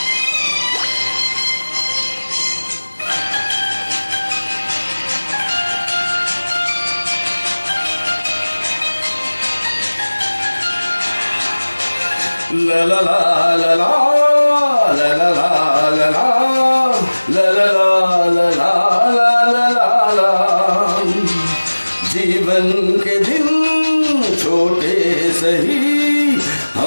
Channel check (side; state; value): both; inverted; correlation -1.00